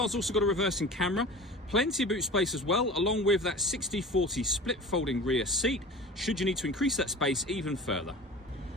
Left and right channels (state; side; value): normal; both; correlation 0.37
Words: also got a reversing camera, plenty of boot space as well, along with that 60/40 split folding rear seat, should you need to increase that space even further.